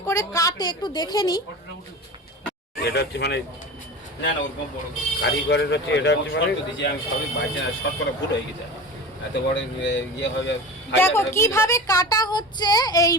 করে কাটে একটু দেখে নিই। এটা হচ্ছে মানে না না ওরকম বড় কারিগরের হচ্ছে, এটা হচ্ছে মানে দিছি আমি সবই বাজে না, শর্ট করে ভুল হয়ে গেছে, এত বড় ইয়ে হবে। দেখো কিভাবে কাটা হচ্ছে এই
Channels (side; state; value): both; normal; correlation 0.32